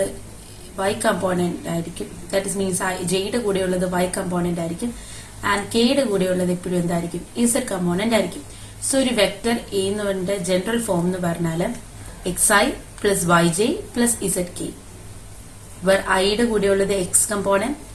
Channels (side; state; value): both; identical; correlation 1.00